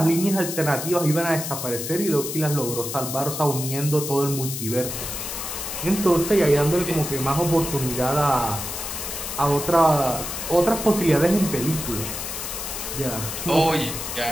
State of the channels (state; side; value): noise; left; hiss, 6 dB below the sound